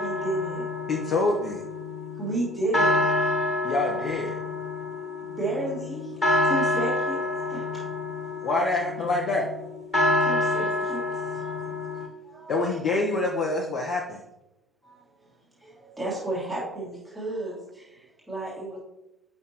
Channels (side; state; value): both; normal; correlation 0.48